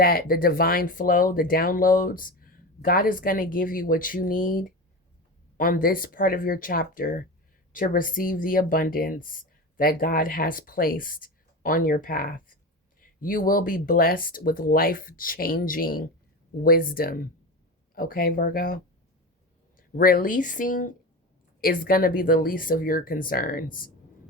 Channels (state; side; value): normal; both; correlation 0.25